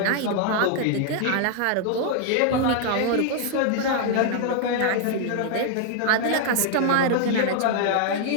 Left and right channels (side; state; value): both; different; correlation 0.00